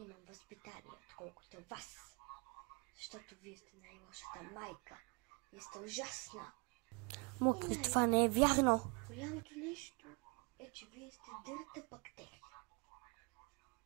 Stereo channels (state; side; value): quieter; left; 32.6 dB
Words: възпитание, отколкото вас. Защото вие сте най-лошата майка. Вие сте ужасна. Мокри, това не е вярно. Голямото нещо е, че вие сте дърта бактерия.